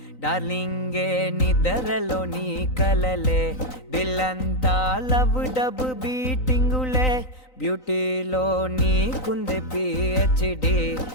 డార్లింగే నిద్రలో నీ కలలే దిల్లంతా లవ్ డబ్ బీటింగులే బ్యూటీలో నీకుంది పిహెచ్డి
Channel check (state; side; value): late; right; 3.9 ms